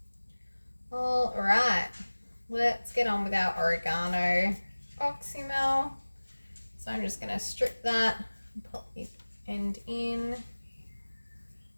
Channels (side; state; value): both; inverted; correlation -1.00